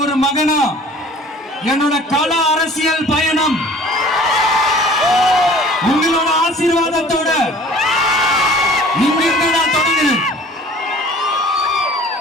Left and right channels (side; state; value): both; normal; correlation 0.48